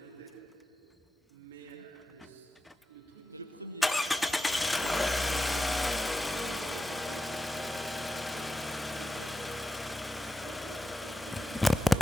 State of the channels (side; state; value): both; normal; correlation 0.92